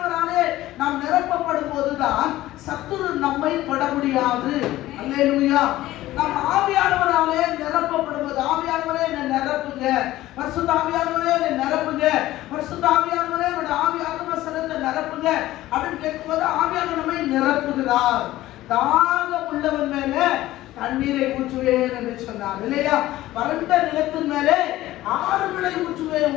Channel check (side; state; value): right; quieter; 15.8 dB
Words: நாம் நிரப்பப்படும் போதுதான் சத்துரு நம்மை தொட முடியாது. அல்லேலூயா. நாம் ஆவியானவராலே நிரப்பப்படும்போது, ஆவியானவரே என்னை நிரப்புங்க, பரிசுத்த ஆவியானவரே என்னை நிரப்புங்க, பரிசுத்த ஆவியானவரே என்னோட ஆவி ஆத்மசனத்தை நிரப்புங்க அப்படின்னு கேட்கும்போது ஆவியானவர் நம்மை நிரப்புகிறார். தாகம் உள்ளவன் மேல தண்ணீரை ஊற்றுவேன் என்று சொன்னார் இல்லையா? வறண்ட நிலத்தின் மேலே ஆறுகளை ஊற்றுவேன்